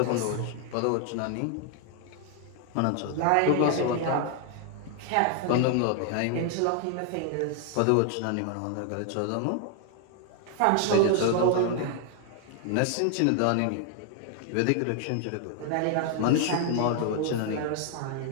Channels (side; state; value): both; different; correlation 0.00